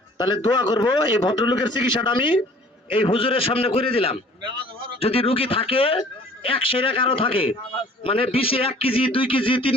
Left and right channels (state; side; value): normal; both; correlation 0.51